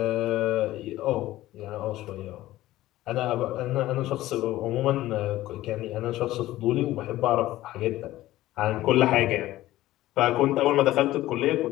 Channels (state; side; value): quieter; right; 15.8 dB